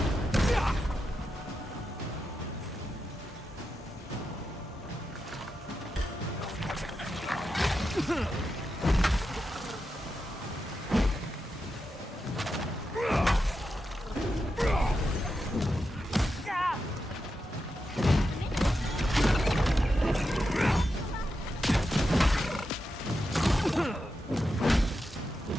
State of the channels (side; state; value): both; normal; correlation 0.88